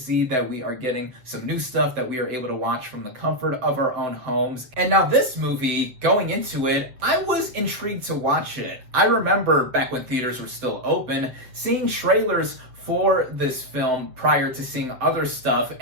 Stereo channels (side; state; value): left; late; 7.8 ms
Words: that we are getting some new stuff that we are able to watch from the comfort of our own homes. And now this movie, going into it, I was intrigued to watch it. I remember back when theaters were still open, seeing trailers for this film prior to seeing other stuff,